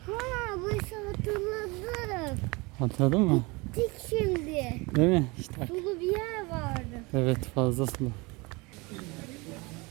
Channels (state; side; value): quieter; left; 25.8 dB